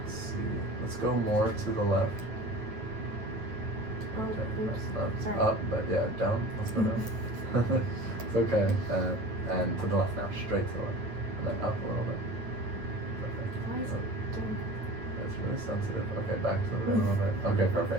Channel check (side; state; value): left; late; 9.1 ms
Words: see. Let's go more to the left. Oh, oops. Not Sorry. up, but yeah, down. Let's go down. It's okay. And to the left now, straight to the left. And then up a little bit. Perfect. Why is it doing? It's really sensitive. Okay, back to the right a little bit. Okay,